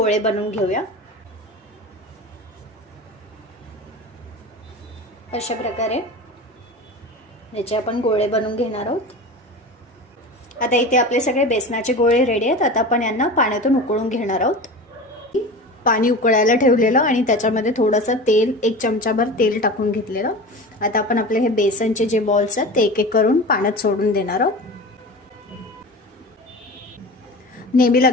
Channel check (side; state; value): both; normal; correlation 0.32